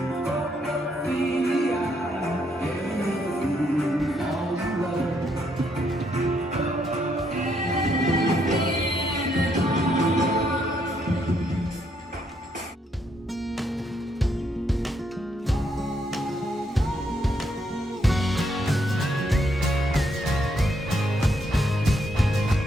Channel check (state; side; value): normal; both; correlation 0.74